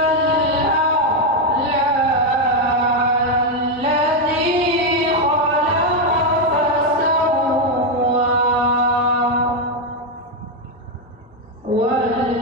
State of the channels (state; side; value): normal; both; correlation 0.04